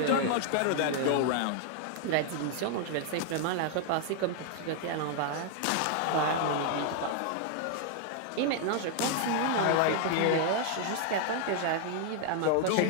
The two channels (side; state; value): both; different; correlation 0.00